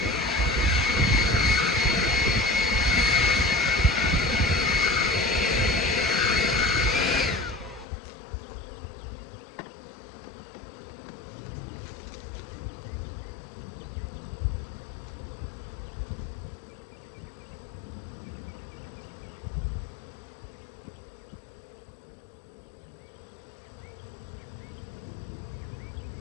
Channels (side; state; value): right; drops out; at 7.9 s